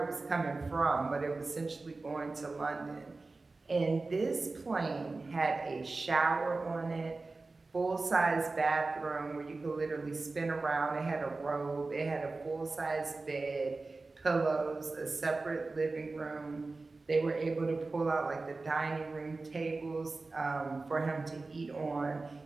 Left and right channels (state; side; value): quieter; left; 3.6 dB